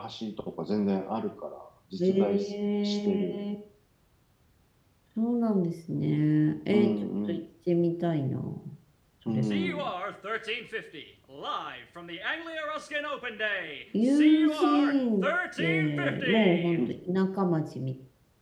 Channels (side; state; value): both; identical; correlation 1.00